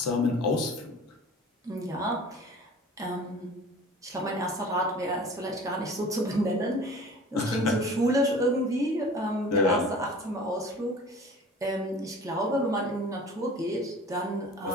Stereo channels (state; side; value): normal; both; correlation 0.43